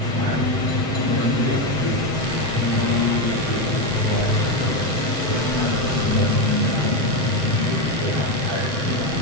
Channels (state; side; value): late; left; 7.8 ms